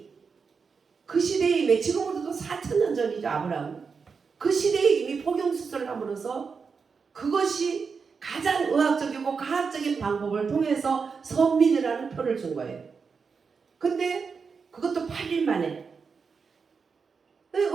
그 시대에 이미, 지금으로도 4,000년 전이죠. 아브라함. 그 시대에 이미 포경수술을 함으로써 그것이 가장 의학적이고 과학적인 방법을 통해서 선민이라는 표를 준 거예요. 근데 그것도 8일 만에,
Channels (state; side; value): quieter; left; 5.4 dB